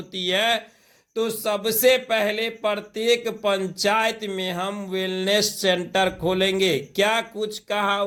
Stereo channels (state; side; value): identical; both; correlation 1.00